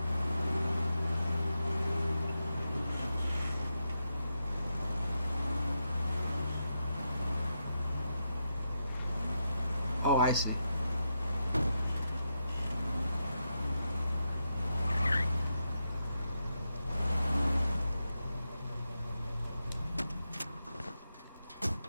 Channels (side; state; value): both; inverted; correlation -0.86